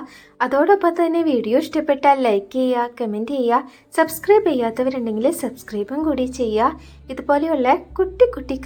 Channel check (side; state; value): both; identical; correlation 1.00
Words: അതോടൊപ്പം തന്നെ വീഡിയോ ഇഷ്ടപ്പെട്ടാൽ ലൈക്ക് ചെയ്യുക, കമൻറ്റ് ചെയ്യുക. സബ്സ്ക്രൈബ് ചെയ്യാത്തവരുണ്ടെങ്കിൽ സബ്സ്ക്രൈബും കൂടി ചെയ്യുക. ഇതുപോലെയുള്ള കുട്ടി കുട്ടി